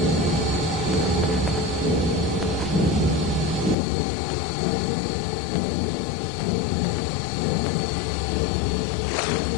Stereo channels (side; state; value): right; drops out; at 3.8 s